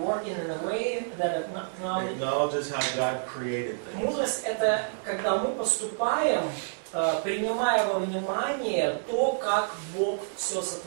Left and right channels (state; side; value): silent; left; digital silence